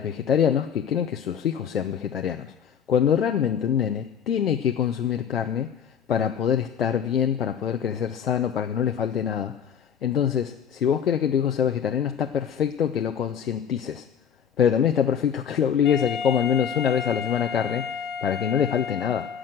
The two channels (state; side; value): quieter; right; 8.1 dB